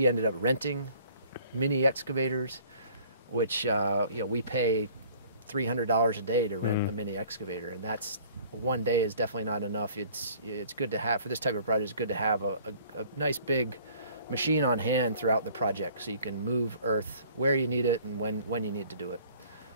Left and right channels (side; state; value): both; inverted; correlation -0.54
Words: ended up renting mini excavators, which we pay $300 a day to rent a mini excavator, and that's one day is definitely not enough. It's good to have, for this type of project, it's good to have a nice big machine on hand throughout the project, so you can move earth where you need it and when you need to do it.